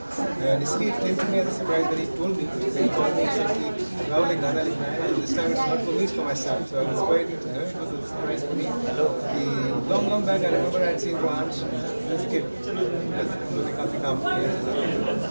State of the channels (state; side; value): inverted; both; correlation -1.00